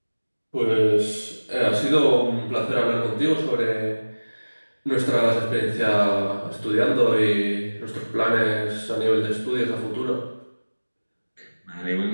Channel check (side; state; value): both; inverted; correlation -1.00